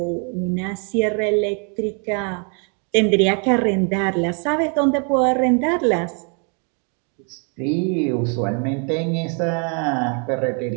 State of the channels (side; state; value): left; quieter; 39.0 dB